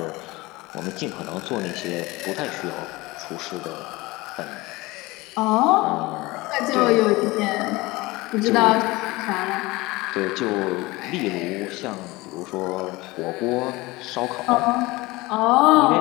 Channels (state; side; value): quieter; right; 21.5 dB